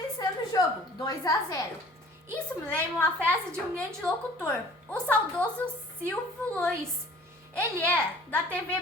o jogo, 2-0. Isso me lembra uma frase de um grande locutor, o saudoso Silvio Luiz. Ele é da TV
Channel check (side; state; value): both; normal; correlation 0.50